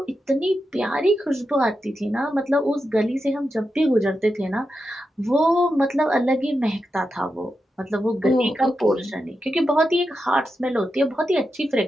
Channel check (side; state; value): both; normal; correlation 0.88